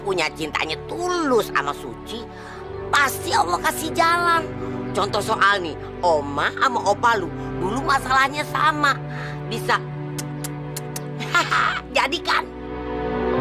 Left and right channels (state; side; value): identical; both; correlation 1.00